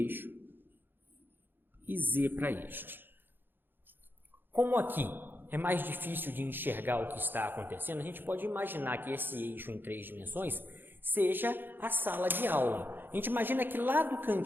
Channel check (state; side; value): late; left; 0.097 ms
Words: e z para este. Como aqui é mais difícil de enxergar o que está acontecendo, a gente pode imaginar que esse eixo em 3 dimensões seja a sala de aula. A gente imagina que lá do